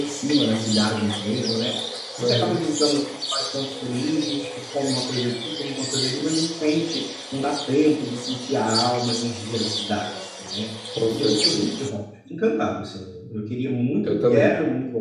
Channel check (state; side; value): identical; both; correlation 1.00